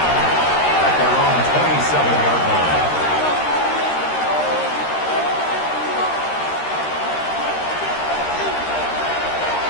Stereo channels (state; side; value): late; right; 13 ms